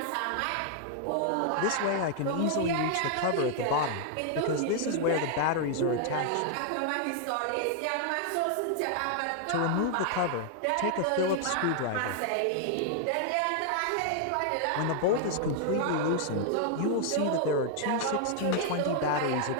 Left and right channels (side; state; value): both; different; correlation 0.00